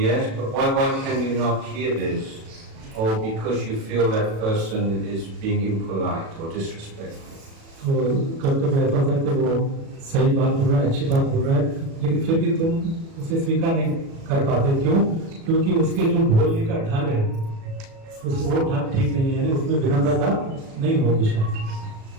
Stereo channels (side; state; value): left; late; 36 ms